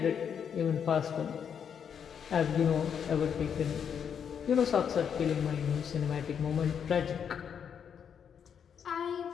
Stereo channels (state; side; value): quieter; right; 7.7 dB